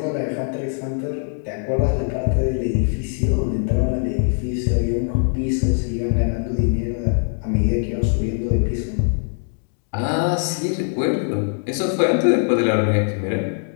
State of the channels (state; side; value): silent; right; 59 dB below the other